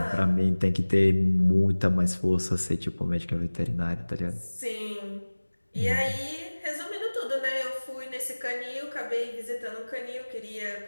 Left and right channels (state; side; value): inverted; both; correlation -1.00